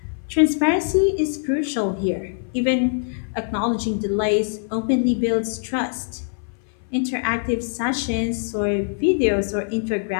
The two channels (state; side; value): silent; right; 57 dB below the other